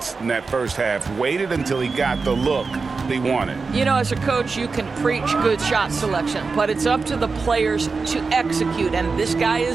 in that first half. Waited until he got the look he wanted. You know, as a coach, you can preach good shot selection, but it's up to the players to execute, and this guy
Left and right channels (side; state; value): left; quieter; 4.5 dB